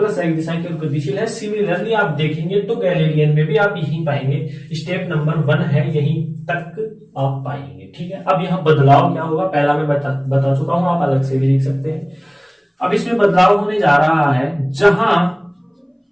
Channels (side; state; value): both; identical; correlation 1.00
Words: x दिशा की ओर गतिशील है। सिमिलरली आप देखेंगे तो गैलीलियन में भी आप यही पाएंगे, स्टेप नंबर 1 है, यहीं तक आप पाएंगे। ठीक है, अब यहाँ बदलाव क्या होगा, पहला मैं बता चुका हूं, आप अलग से भी लिख सकते हैं। अब इसमें बदलाव होने जा रहा है, जहां